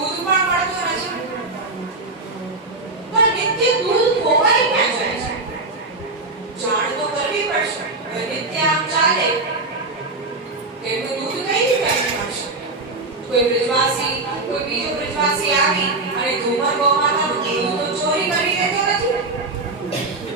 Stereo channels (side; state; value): left; quieter; 3.2 dB